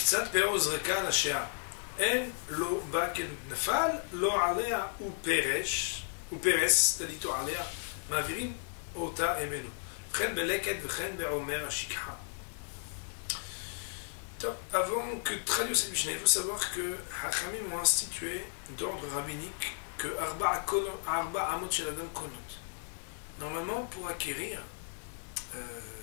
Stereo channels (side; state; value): right; silent; 55 dB below the other